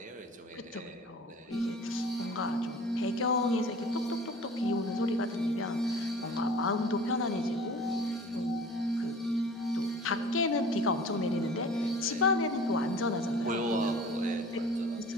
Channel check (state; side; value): normal; both; correlation 0.44